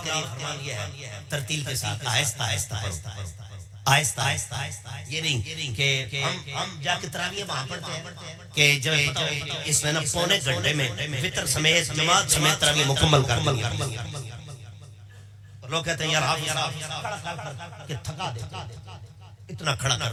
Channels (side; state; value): both; identical; correlation 1.00